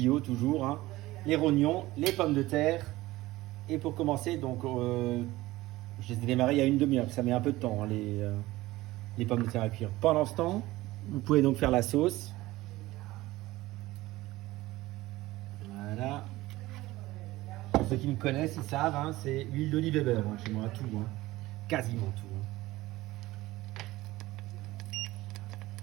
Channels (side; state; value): left; quieter; 18.1 dB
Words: toujours, les rognons, les pommes de terre. Et pour commencer, donc je les ai démarrés il y a une demi-heure, ça met un peu de temps les pommes de terre à cuire. Pendant ce temps, vous pouvez donc faire la sauce. Voilà. Pour ceux qui me connaissent, ils savent, c'est huile d'olive et beurre chez moi, tout, quasiment tout.